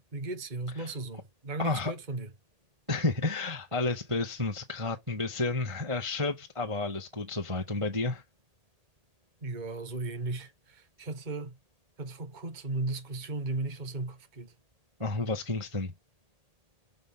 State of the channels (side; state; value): left; late; 1.8 ms